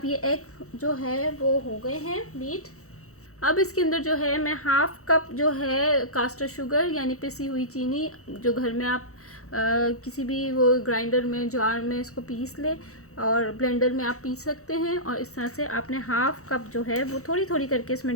ये एग जो है वो हो गए हैं बीट। अब इसके अंदर जो है मैं हाफ कप जो है कास्टर शुगर यानी पिसी हुई चीनी, जो घर में आप किसी भी वो ग्राइंडर में, जार में इसको पीस ले, और ब्लेंडर में आप पीस सकते हैं। और इस तरह से आपने हाफ कप जो है वो थोड़ी थोड़ी करके इसमें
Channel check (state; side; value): late; right; 0.64 ms